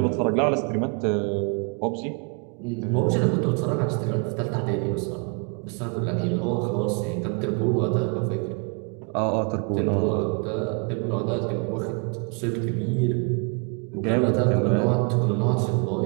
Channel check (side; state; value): left; quieter; 36.8 dB